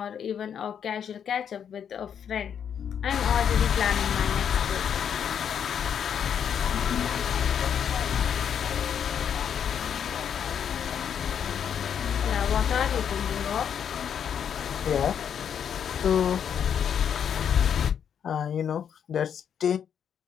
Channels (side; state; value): right; quieter; 8.2 dB